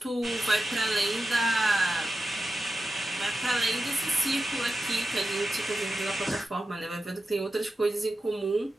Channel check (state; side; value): normal; both; correlation 0.91